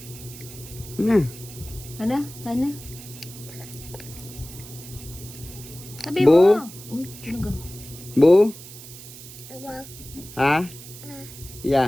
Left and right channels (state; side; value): noise; right; hiss, 15 dB below the sound